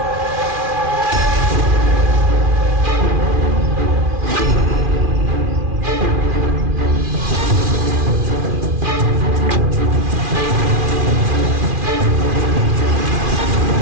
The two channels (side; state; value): left; late; 2.4 ms